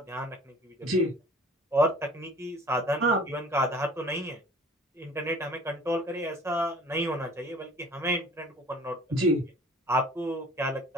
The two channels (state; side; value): normal; both; correlation 0.48